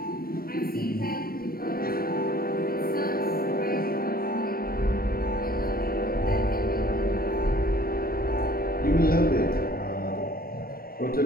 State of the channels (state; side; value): late; right; 0.43 ms